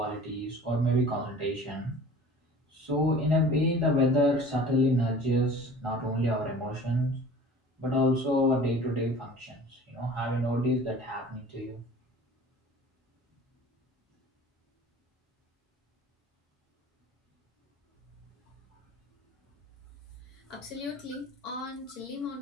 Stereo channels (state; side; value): normal; both; correlation 0.44